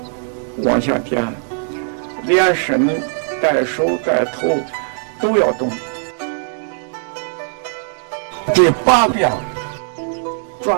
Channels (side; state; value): left; silent; digital silence